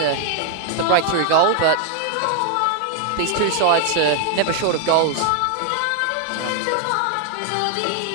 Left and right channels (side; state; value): both; different; correlation 0.00